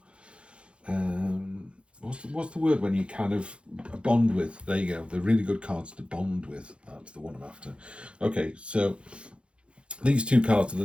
what's the word when you kind of bond with? There you go. They're really good cards to bond with. That's the one I'm after. Okay, so these two cards are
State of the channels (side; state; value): left; late; 0.058 ms